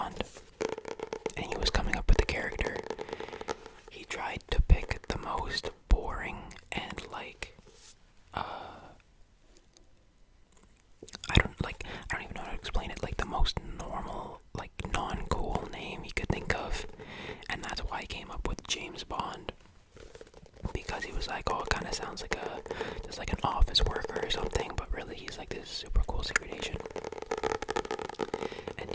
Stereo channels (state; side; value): identical; both; correlation 1.00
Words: and he was coming up with the character, he tried to pick the most boring and I don't even know how to explain it, like the most normal, like non-cool name he could think of, and that's why he came up with James Bond. Because he was like, oh, it kind of sounds like just like an office worker or something, but really he's like this super cool secret agent. And